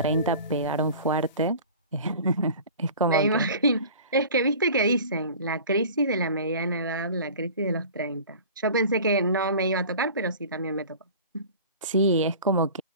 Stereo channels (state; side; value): inverted; both; correlation -0.40